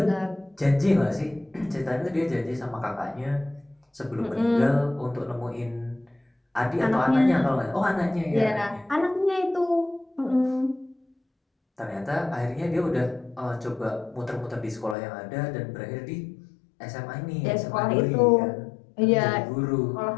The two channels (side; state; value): right; drops out; at 15.0 s